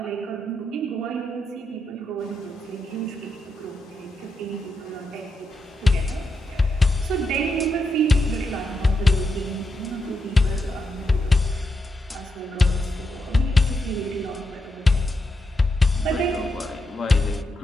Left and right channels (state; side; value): normal; both; correlation 0.84